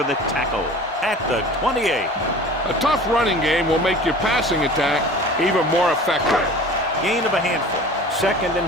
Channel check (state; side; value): normal; both; correlation 0.41